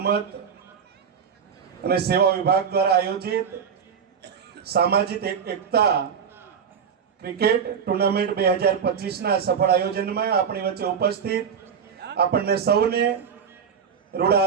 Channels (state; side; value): quieter; left; 7.1 dB